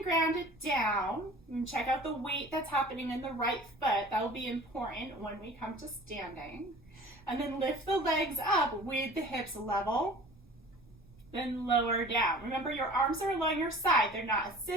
grounded down. And check out the weight that's happening in the right foot. That will be important when we come to standing. And then lift the legs up with the hips level, then lower down. Remember, your arms are along your side. They're not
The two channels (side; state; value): right; noise; rumble, 26 dB below the sound